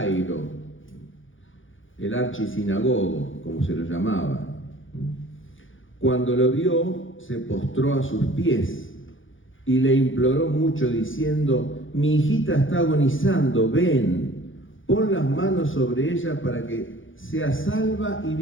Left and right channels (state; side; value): late; right; 0.57 ms